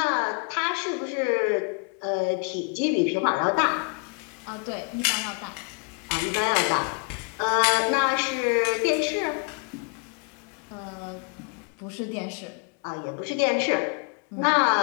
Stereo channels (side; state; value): right; quieter; 35.1 dB